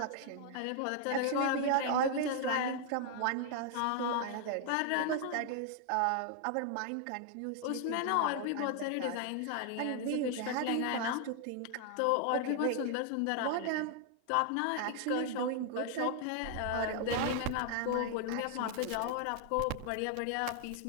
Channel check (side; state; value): both; different; correlation 0.00